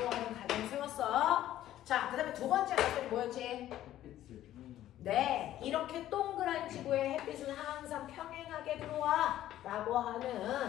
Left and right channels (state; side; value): quieter; right; 13.0 dB